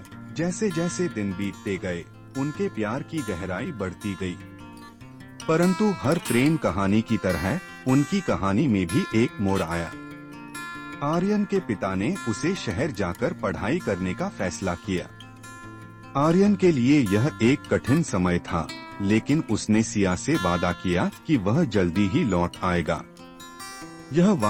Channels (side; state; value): both; identical; correlation 1.00